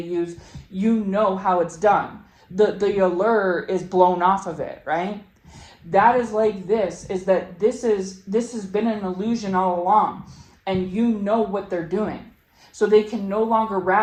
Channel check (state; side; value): identical; both; correlation 1.00